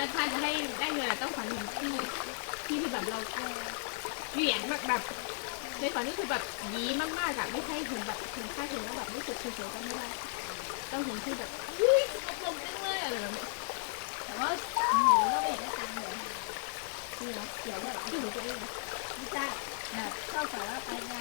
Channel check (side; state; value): right; silent; digital silence